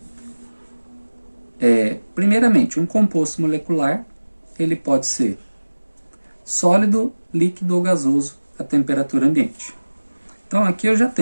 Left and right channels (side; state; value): both; inverted; correlation -1.00